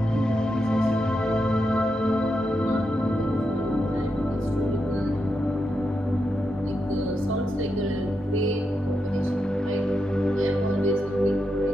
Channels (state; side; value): normal; both; correlation 0.85